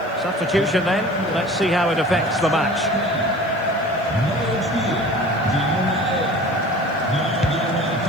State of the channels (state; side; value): noise; right; hiss, 30 dB below the sound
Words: Substitution then. Let's see how it affects the match.